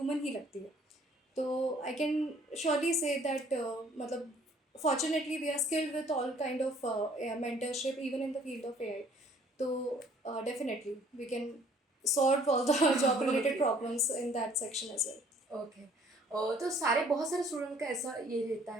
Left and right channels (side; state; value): both; normal; correlation 0.58